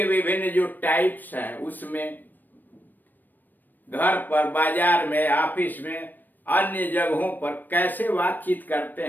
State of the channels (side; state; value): right; late; 0.090 ms